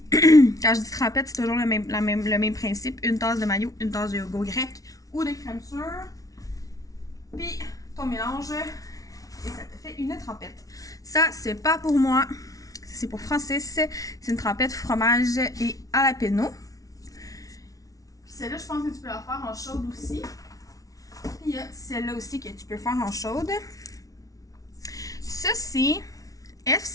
quand je dis trempette, c'est toujours le même principe. Une tasse de mayo, une tasse de yogourt grec ou de crème sûre. Puis, ton mélange, et ça te fait une trempette. Ça, c'est pas pour moi. C'est pour Francis. C'est une trempette fromage et jalapeno. Puis celle-là, je pense que tu peux la faire en chaude aussi. Puis il y a celle-là aussi que tu peux faire en chaude. Ça, c'est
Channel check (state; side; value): late; right; 0.18 ms